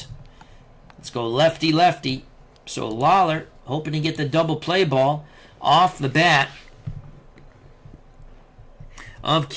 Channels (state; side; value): identical; both; correlation 1.00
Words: Let's go lefty-lefty. So Lawler, hoping to get the double play ball off the bat of